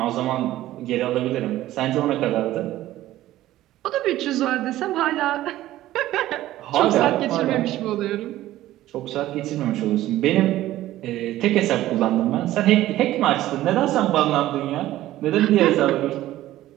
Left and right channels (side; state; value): left; quieter; 14.8 dB